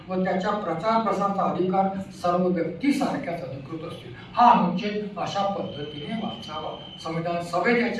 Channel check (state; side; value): identical; both; correlation 1.00